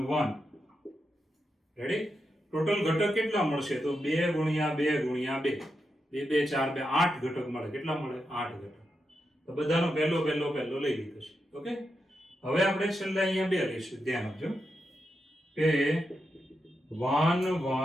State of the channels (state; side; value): normal; both; correlation 0.86